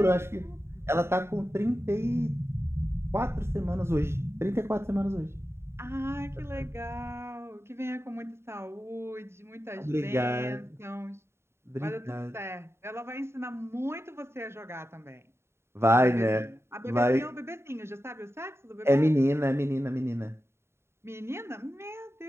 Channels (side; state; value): left; late; 0.12 ms